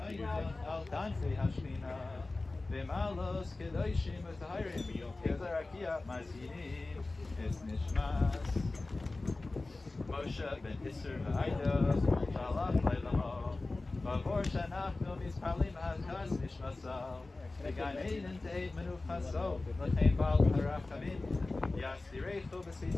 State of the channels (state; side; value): quieter; right; 3.2 dB